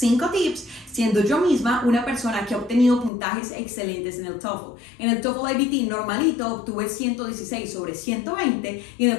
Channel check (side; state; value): right; drops out; at 3.1 s